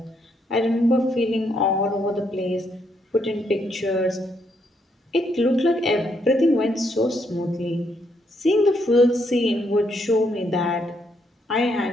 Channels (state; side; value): normal; both; correlation 0.75